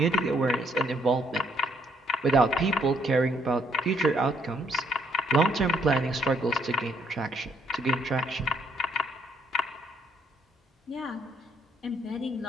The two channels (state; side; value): normal; both; correlation 0.69